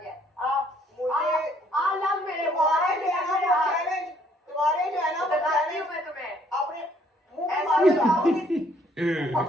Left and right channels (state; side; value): normal; both; correlation 0.64